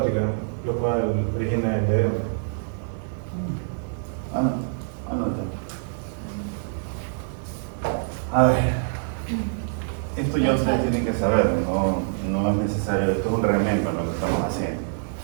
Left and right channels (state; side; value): silent; left; 62 dB below the other